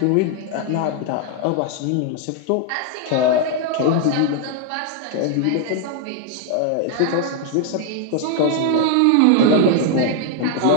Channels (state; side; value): different; both; correlation 0.00